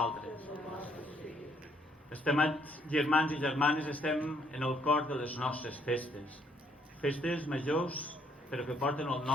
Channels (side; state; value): both; normal; correlation 0.67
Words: Estimats germans i germanes, estem en el cor de les nostres festes. Festes majors, però que porten el